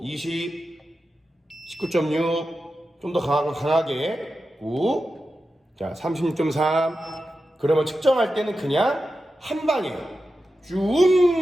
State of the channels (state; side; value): normal; both; correlation 0.91